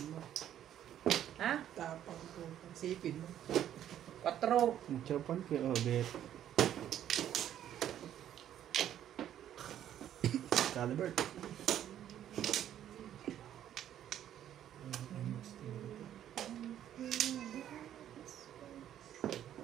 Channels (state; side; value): quieter; left; 10.9 dB